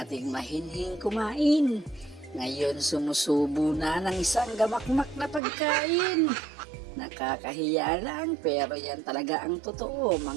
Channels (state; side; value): drops out; left; at 5.4 s